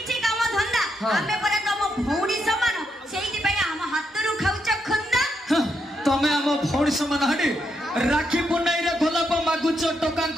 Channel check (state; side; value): normal; both; correlation 0.80